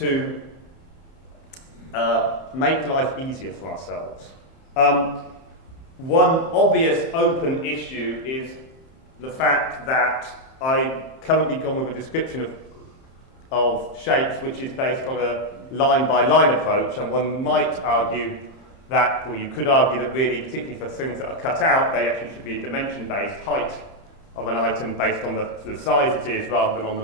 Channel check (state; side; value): late; right; 31 ms